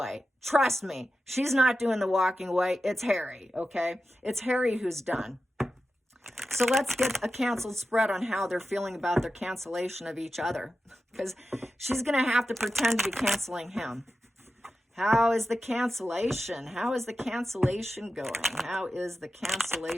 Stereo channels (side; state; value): both; normal; correlation 0.92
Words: Trust me, she's not doing the walking away. It's Harry, okay? It's Harry who's done. So let's get a canceled spread on how they're feeling about their cancellation of each other, because she's going to have to pretend to be canceling him. How is the cancellation? How is the cancellation going? How is the